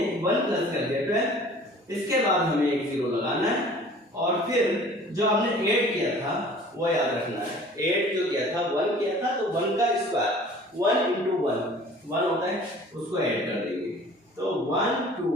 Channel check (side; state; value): both; normal; correlation 0.48